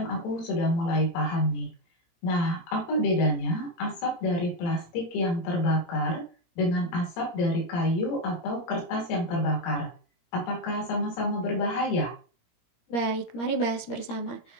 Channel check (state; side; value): late; right; 17 ms